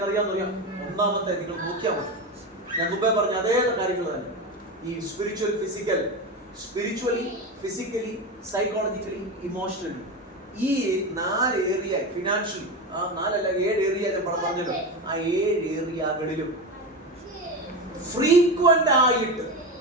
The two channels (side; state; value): both; normal; correlation 0.20